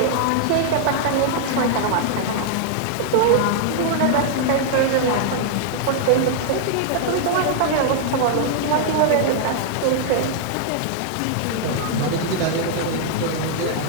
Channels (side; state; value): both; different; correlation -0.01